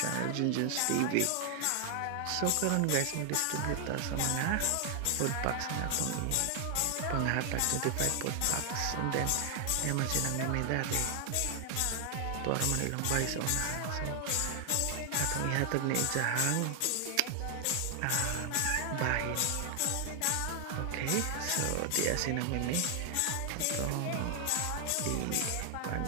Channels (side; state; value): both; different; correlation 0.00